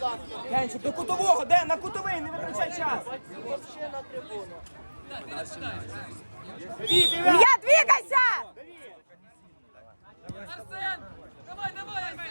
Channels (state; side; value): inverted; both; correlation -1.00